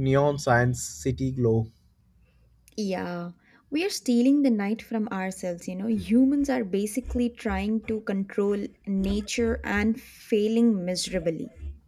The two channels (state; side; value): identical; both; correlation 1.00